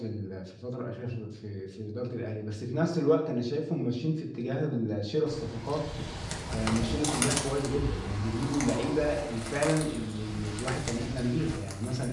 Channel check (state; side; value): identical; both; correlation 1.00